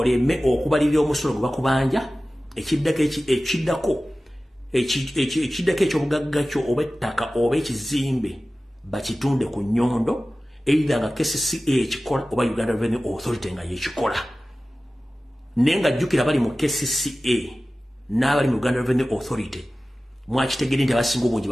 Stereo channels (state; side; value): normal; both; correlation 0.96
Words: okubalirira omusolo gwe bakubanja ekiddako eky'obugagga kyo oba ettaka oba ekizimbe bakitunde ku nnyondo either nga KCCA ekikola oba Uganda Revenue Authority nga yekikola. Naye nga jjukira bali mu KCCA n'abali mu Uganda Revenue Authority mwakitegedde nti abasinga obungi